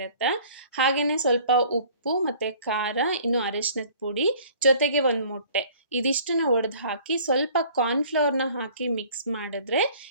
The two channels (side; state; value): both; inverted; correlation -0.51